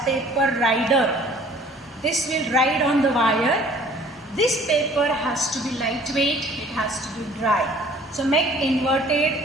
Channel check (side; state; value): both; normal; correlation 0.52